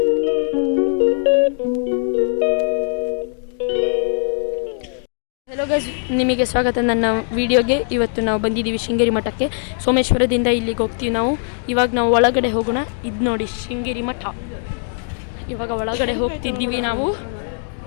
guys, ನಿಮಗೆ ಸ್ವಾಗತ ನನ್ನ ವಿಡಿಯೋಗೆ. ಇವತ್ತು ನಾವು ಬಂದಿದ್ದೀವಿ ಶೃಂಗೇರಿ ಮಠಕ್ಕೆ. ಸೋಮೇಶ್ವರದಿಂದ ಇಲ್ಲಿಗೆ ಹೋಗ್ತೀವಿ ನಾವು. ಇವಾಗ ನಾವು ಒಳಗಡೆ ಹೋಗೋಣ. ಇದು ನೋಡಿ ಶೃಂಗೇರಿ ಮಠ. ಇವಾಗ ಒಳಗಡೆ ಹೋಗ್ತಿದ್ದೀವಿ ನಾವು.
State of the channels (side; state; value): right; silent; 66 dB below the other